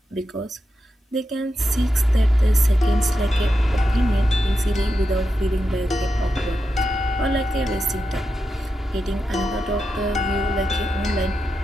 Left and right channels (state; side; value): normal; both; correlation 0.88